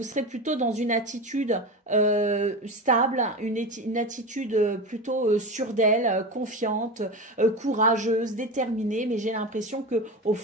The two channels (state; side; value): normal; both; correlation 0.25